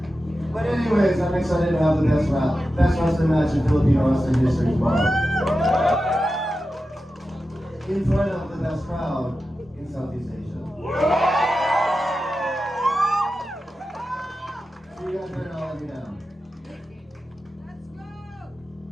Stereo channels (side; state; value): both; normal; correlation 0.92